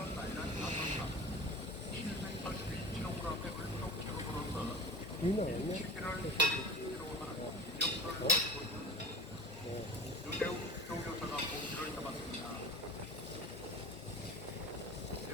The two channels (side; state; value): both; normal; correlation 0.36